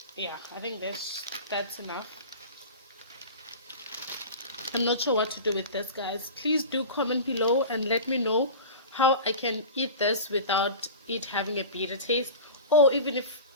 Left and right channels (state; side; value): inverted; both; correlation -0.32